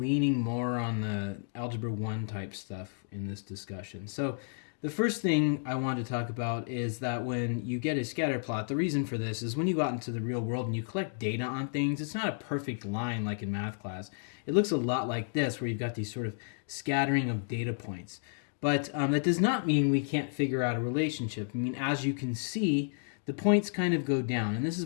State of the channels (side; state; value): right; silent; digital silence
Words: more on the Algebra 1 type stuff in this discussion. So the first thing I want to talk about is that when you get a scatterplot, the reason for this is when you go out into the real world and you collect data on things, it's not a perfect line like in math class. It looks a lot like this, where you've got these sort of scattering of data points. But that does not mean we can't figure out a relationship. I mean, as you can see, the points kind of go down, and this is